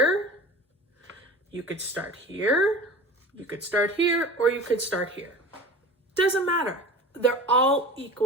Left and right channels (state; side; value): normal; both; correlation 0.37